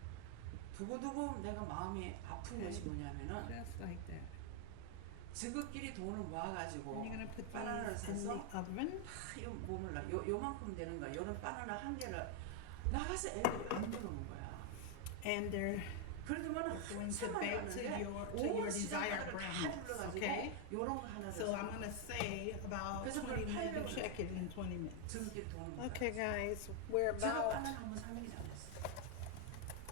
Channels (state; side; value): different; both; correlation 0.00